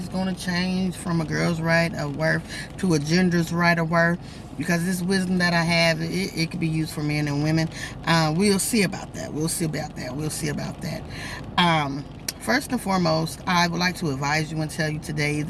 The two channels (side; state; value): both; identical; correlation 1.00